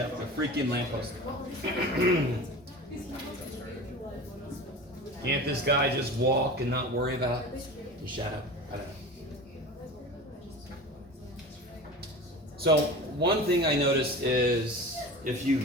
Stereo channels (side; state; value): both; normal; correlation 0.34